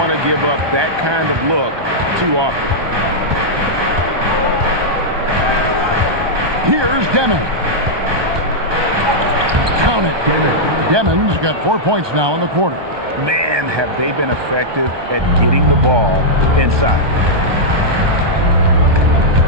to give up that kind of look too often. Here's Demon. Count it. Demon's got 4 points now in the quarter. Man, have they been effective at getting the ball inside.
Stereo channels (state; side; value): late; left; 1.2 ms